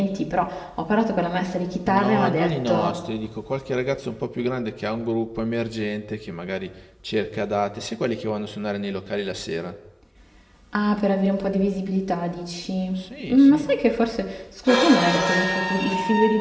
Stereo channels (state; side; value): identical; both; correlation 1.00